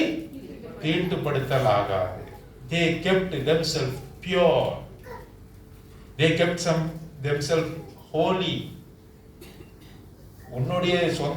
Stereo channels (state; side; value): identical; both; correlation 1.00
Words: தீட்டுப்படுத்தலாகாது. They kept themselves pure. They kept themselves holy. உன்னுடைய